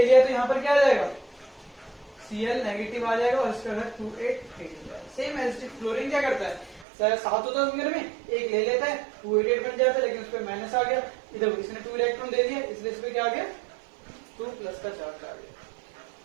लिया, तो यहाँ पर क्या आ जाएगा, Cl नेगेटिव आ जाएगा, और इसका घर 2 8 8 हो जाएगा। सेम एज क्लोरीन क्या करता है, 7 होता है घर में, एक ले लेता है, 2 8 8 बन जाता है, लेकिन उस पर माइनस आ गया, इधर इसने 2 इलेक्ट्रॉन दे दिया, इसलिए इस पर क्या आ गया, 2 प्लस का चार्ज आ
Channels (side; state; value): left; drops out; at 6.9 s